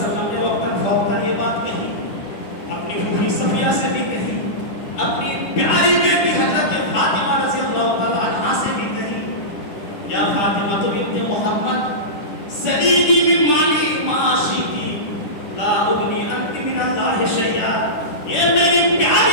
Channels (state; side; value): late; right; 10 ms